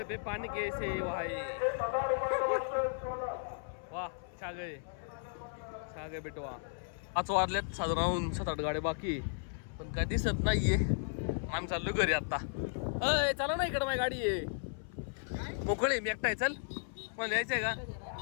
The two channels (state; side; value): silent; right; 54 dB below the other